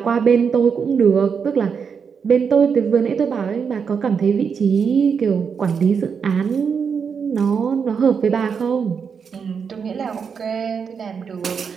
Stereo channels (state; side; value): quieter; left; 6.3 dB